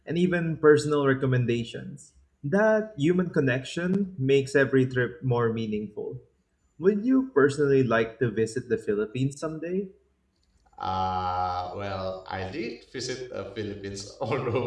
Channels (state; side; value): identical; both; correlation 1.00